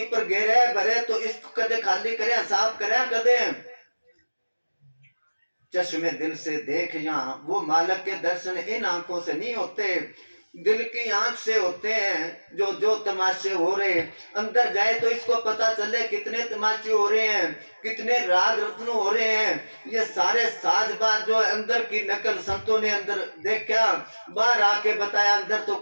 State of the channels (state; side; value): inverted; both; correlation -1.00